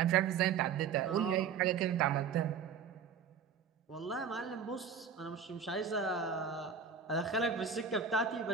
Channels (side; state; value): left; quieter; 6.6 dB